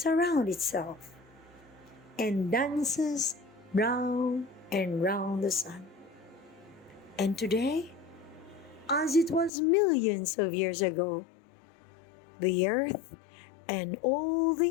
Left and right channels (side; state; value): right; drops out; at 9.5 s